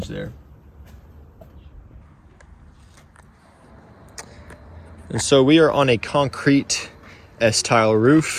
there. And so we are on a concrete S-tile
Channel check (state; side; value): identical; both; correlation 1.00